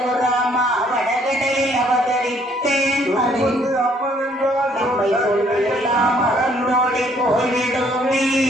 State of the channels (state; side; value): normal; both; correlation 0.64